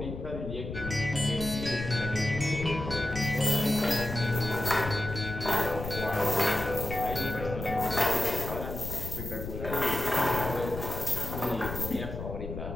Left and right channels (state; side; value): noise; left; rumble, 7 dB below the sound